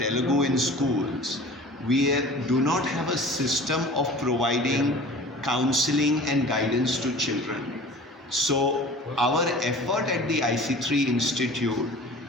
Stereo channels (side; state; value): both; normal; correlation 0.42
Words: in schools, we do not have a system of providing counseling and guidance to children. So our effort at the IC3 Institute